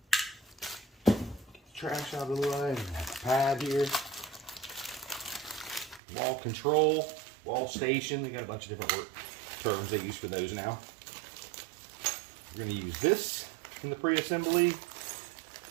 Get the trash out of the way. We have a pad here. Wall control, wall station. They got a bunch of different terms they use for those now. We're going to use this in the pre-assembly.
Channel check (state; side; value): drops out; left; at 6.0 s